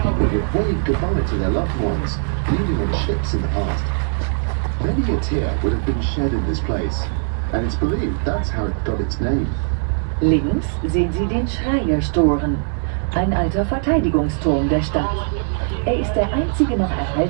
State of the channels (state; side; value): silent; left; digital silence